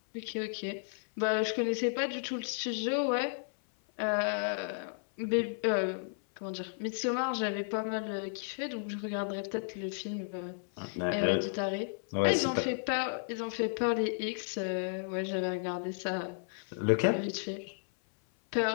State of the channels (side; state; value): right; silent; 56 dB below the other